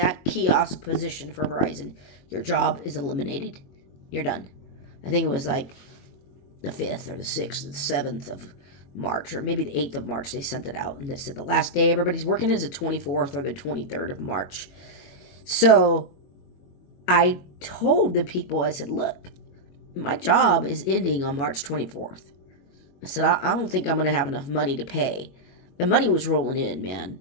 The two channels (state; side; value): late; right; 22 ms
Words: kiosk position for Verizon, your job is eliminated. You're done. I think it was like the 5th or the 6th or the 7th of March, or maybe the 8th of March, they sent it out. And they said the last day everybody's working is the 24th or the 23rd of March. So I told the people, I said, look, my job is ending on March 24th. I said, I don't think I'm going to have enough money to pay. The money was rolling in, man.